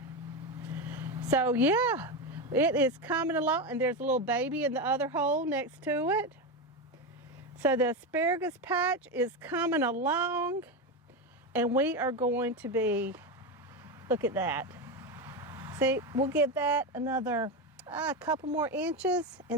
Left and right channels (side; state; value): both; normal; correlation 0.14